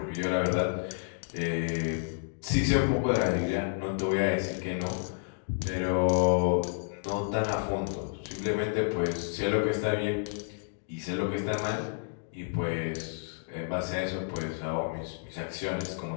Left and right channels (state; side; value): silent; right; digital silence